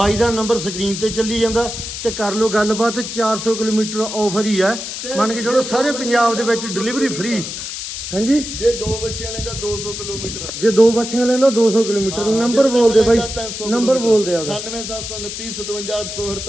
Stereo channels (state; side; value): noise; left; hiss, 7 dB below the sound